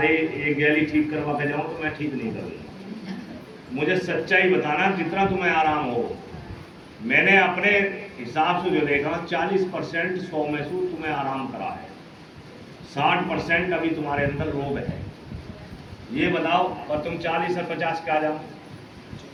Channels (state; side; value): identical; both; correlation 1.00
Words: एक गैली ठीक करवा के जाऊं तो मैं ठीक नहीं करूँगा। मुझे सच्चाई बताना कितना तुम्हें आराम हो। मैंने अपने हिसाब से जो देखा 40% 100 में से तुम्हें आराम करा है, 60% अभी तुम्हारे अंदर रोग है। ये बताओ, और तुम 40 और 50 के आ जाओ,